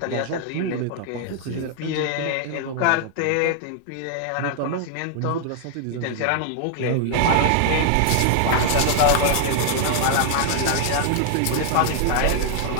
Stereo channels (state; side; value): different; both; correlation 0.00